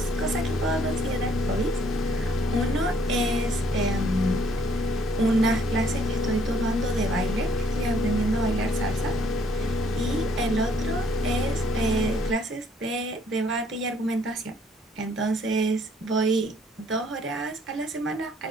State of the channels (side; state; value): both; normal; correlation 0.65